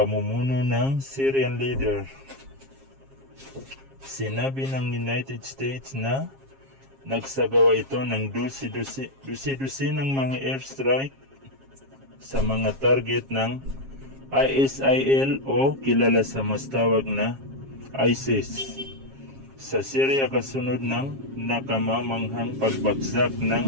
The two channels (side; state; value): left; late; 7.4 ms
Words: ng Syrian leader. Sinabi ng United States na nagsagawa ito ng dusi-dusi ng mga airstrike sa mga target ng ISIL o kilala sa mas tawag na ISIS sa Syria kasunod ng nakamamanghang pagbagsak